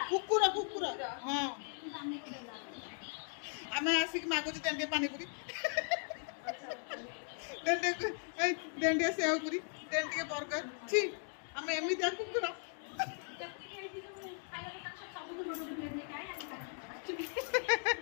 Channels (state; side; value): silent; right; 52 dB below the other